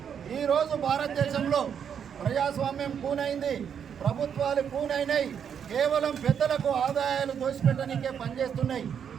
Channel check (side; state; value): left; quieter; 7.9 dB